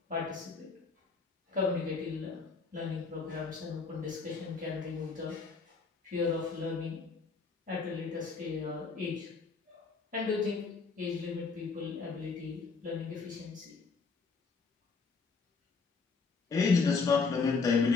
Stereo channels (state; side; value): quieter; right; 4.7 dB